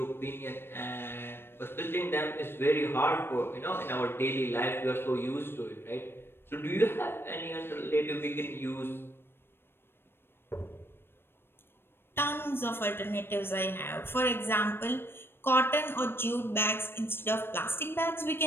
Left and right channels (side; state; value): right; late; 0.11 ms